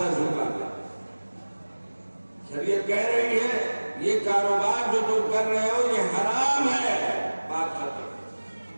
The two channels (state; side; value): inverted; both; correlation -1.00